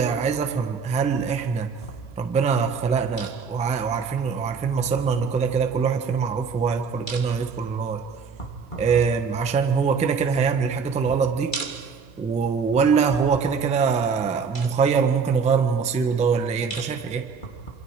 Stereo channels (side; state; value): left; quieter; 5.6 dB